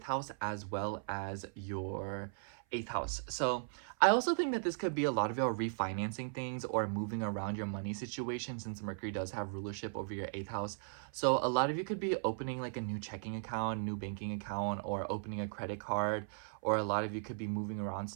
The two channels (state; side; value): silent; left; 53 dB below the other